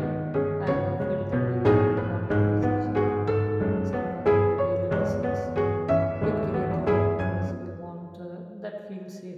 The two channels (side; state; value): both; identical; correlation 1.00